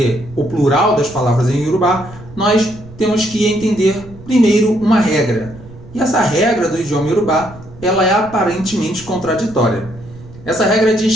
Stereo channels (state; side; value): noise; right; rumble, 19 dB below the sound